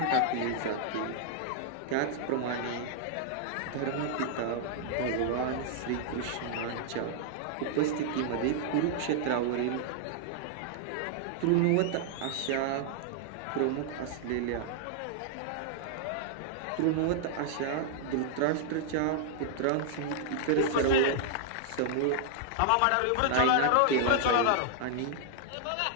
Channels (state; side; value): different; both; correlation -0.01